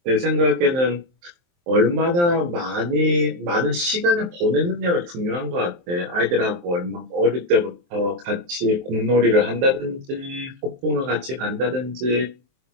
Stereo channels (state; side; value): late; left; 23 ms